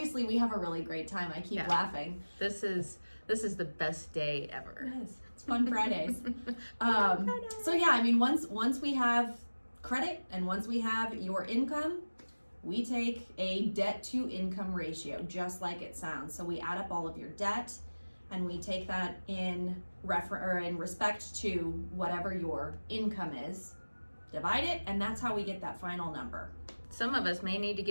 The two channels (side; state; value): both; inverted; correlation -1.00